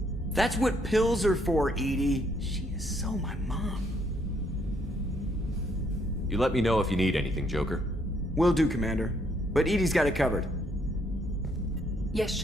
That's what pills are for, Edie. She is so my mom. You let me know if you need anything, Joker. Will do, Commander. But Edie's got it covered. Yes,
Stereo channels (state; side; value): normal; both; correlation 0.70